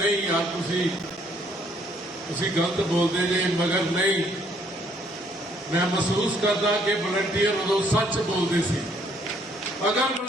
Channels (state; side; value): normal; both; correlation 0.66